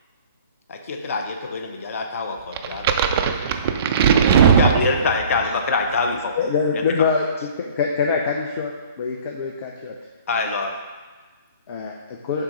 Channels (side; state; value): both; inverted; correlation -0.47